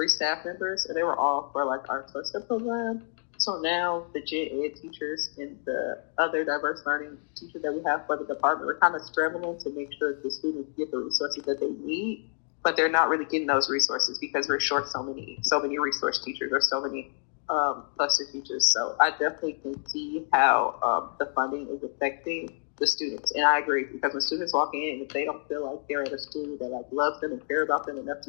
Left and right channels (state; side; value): silent; right; 59 dB below the other